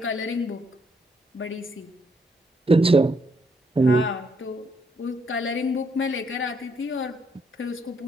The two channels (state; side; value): normal; both; correlation 0.73